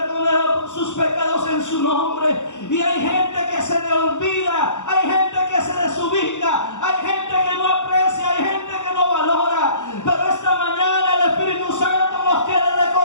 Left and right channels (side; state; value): right; late; 0.85 ms